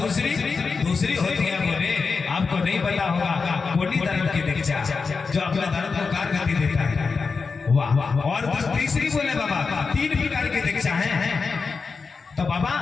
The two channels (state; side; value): quieter; right; 4.8 dB